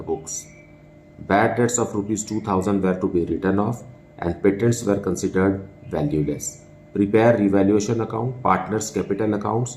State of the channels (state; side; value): identical; both; correlation 1.00